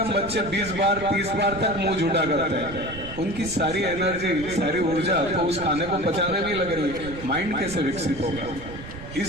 बच्चे 20 बार 30 बार तक मुंह झूठा करते हैं। उनकी सारी एनर्जी, सारी ऊर्जा तो उस खाने को पचाने में लग रही है। माइंड कैसे विकसित होगा?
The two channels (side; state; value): right; noise; rumble, 12 dB below the sound